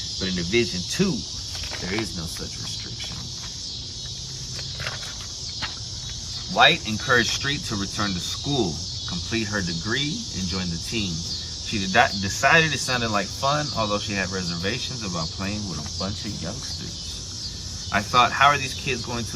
but in Division II, there is no such restriction. White encouraged Street to return to school, complete her degree, and join the team. She decided it sounded like fun, although she had reservations about playing with a bunch of youngsters. I thought, how are these kids going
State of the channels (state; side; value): identical; both; correlation 1.00